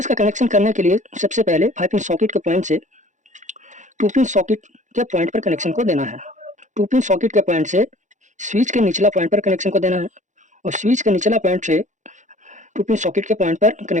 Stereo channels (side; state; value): left; late; 0.35 ms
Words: का कनेक्शन करने के लिए सबसे पहले 5 पिन सॉकेट के पॉइंट से 2 पिन सॉकेट के पॉइंट पर कनेक्शन को देना है। 2 पिन सॉकेट के पॉइंट से स्विच के निचला पॉइंट पर कनेक्शन को देना है और स्विच के निचला पॉइंट से 2 पिन सॉकेट के पॉइंट पर